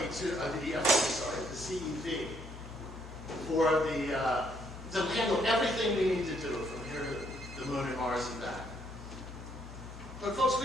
the CEV, for to handle everything we need to do from here to the moon and Mars and back. But folks,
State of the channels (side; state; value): both; normal; correlation 0.71